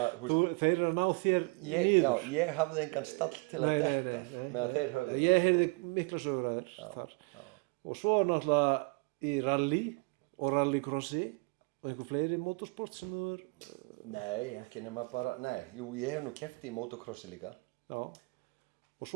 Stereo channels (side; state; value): left; quieter; 31.2 dB